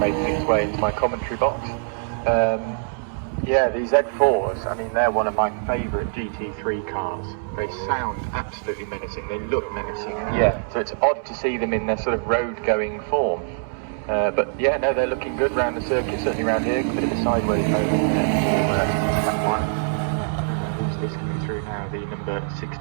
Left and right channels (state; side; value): silent; left; 63 dB below the other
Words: its way into my commentary box. Yeah, these Z4s, I mean, they're one of my favourite GT3 cars. They sound absolutely menacing, they look menacing. Yeah, so it's odd to see them in their sort of road-going form. But yeah, no, they're looking good round the circuit, certainly around here. A bit of a sideways mode in there for that one. Who's this coming through now? The number